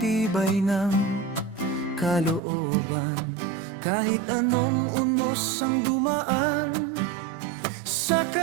tibay ng kalooban. Kahit anong unos ang dumaan sa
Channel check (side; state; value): left; drops out; at 2.4 s